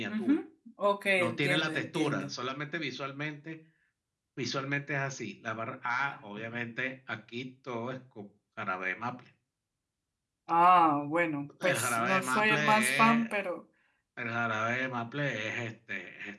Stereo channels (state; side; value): identical; both; correlation 1.00